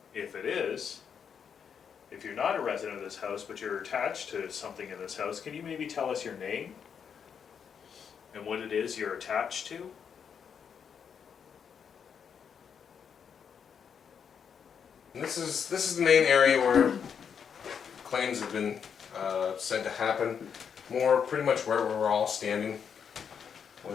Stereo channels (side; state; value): right; quieter; 7.2 dB